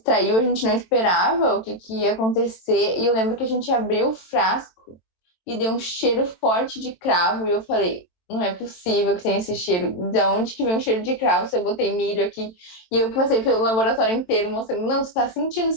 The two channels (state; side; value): late; right; 22 ms